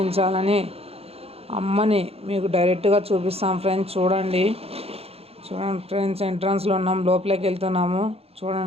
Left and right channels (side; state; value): left; late; 0.29 ms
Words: అమ్మని మీకు డైరెక్ట్గా చూపిస్తాం ఫ్రెండ్స్. చూడండి ఫ్రెండ్స్, ఎంట్రన్స్లో ఉన్నాం, లోపలికి వెళ్తున్నాము.